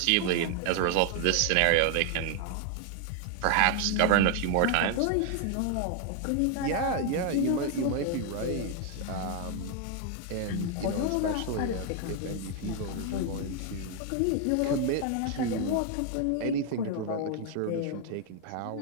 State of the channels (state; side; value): different; both; correlation 0.00